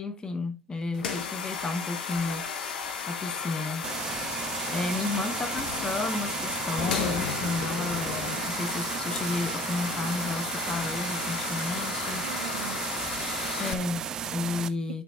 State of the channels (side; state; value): both; normal; correlation 0.50